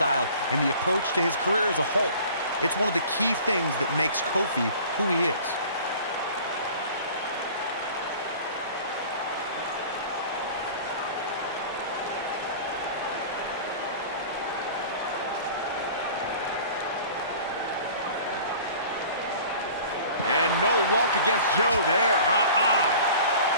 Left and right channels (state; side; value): inverted; both; correlation -0.44